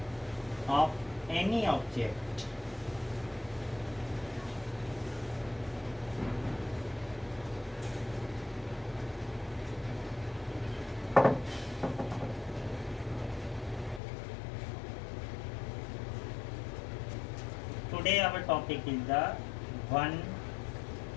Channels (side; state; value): right; drops out; at 14.0 s